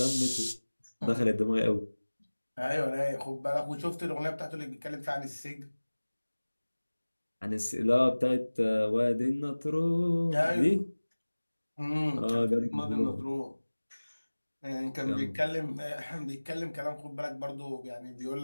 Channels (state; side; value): inverted; both; correlation -1.00